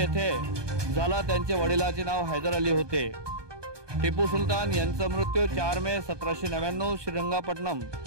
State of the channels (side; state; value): left; late; 1.2 ms